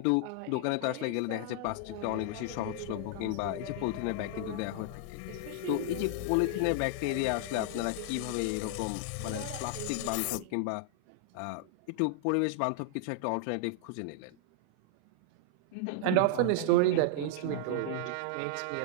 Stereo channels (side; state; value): both; different; correlation -0.01